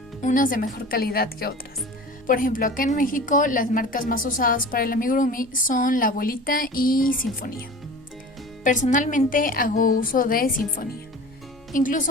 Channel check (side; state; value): both; normal; correlation 0.38